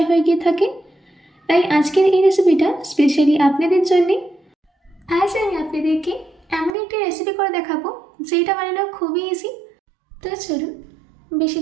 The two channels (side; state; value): left; drops out; at 6.7 s